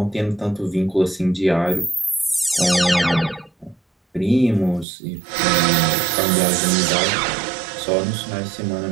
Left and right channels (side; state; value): left; drops out; at 4.9 s